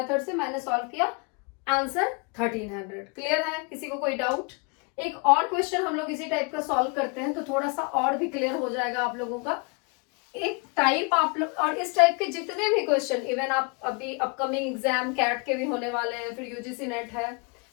से मैंने सॉल्व किया, आंसर 1300. क्लियर है, किसी को कोई डाउट. एक और क्वेश्चन हम लोग इसी टाइप का सॉल्व करते हैं तो थोड़ा सा और भी क्लियर हो जाएगा आप लोगों का. एक टाइप आप लोग, और इस टाइप के जितने भी क्वेश्चन, इवन आप अभी अपकमिंग एग्जाम कैट के भी होने वाले हैं, फिर यूजीसी नेट है,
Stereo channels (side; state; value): right; quieter; 32.5 dB